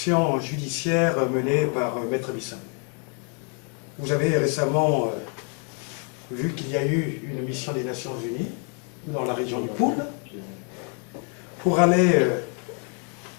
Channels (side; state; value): right; quieter; 39.8 dB